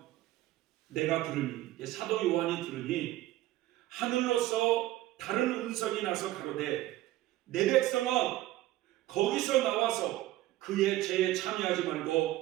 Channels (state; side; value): quieter; left; 15.8 dB